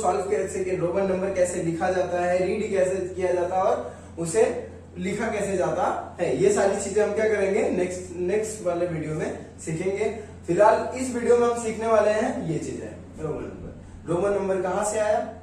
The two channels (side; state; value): both; identical; correlation 1.00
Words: कैसे, रोमन नंबर कैसे लिखा जाता है, रीड कैसे किया जाता है और उसे लिखा कैसे जाता है। ये सारी चीजें हम क्या करेंगे नेक्स्ट वाले वीडियो में सीखेंगे। फिलहाल इस वीडियो में हम सीखने वाले हैं ये चीजें, रोमन नंबर। रोमन नंबर कहाँ से आया,